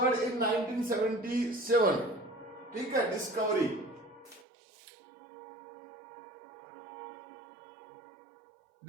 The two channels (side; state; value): left; drops out; at 4.5 s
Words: इन 1977। ठीक है, डिस्कवरी